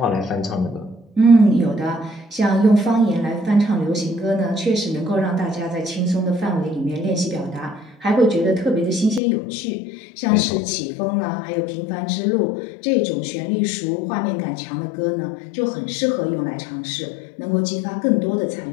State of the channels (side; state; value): right; drops out; at 9.2 s